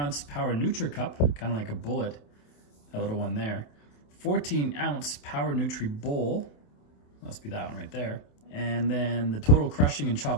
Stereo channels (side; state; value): right; late; 28 ms